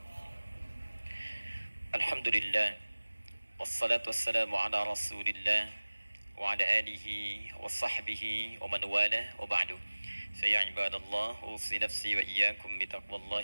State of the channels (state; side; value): inverted; both; correlation -1.00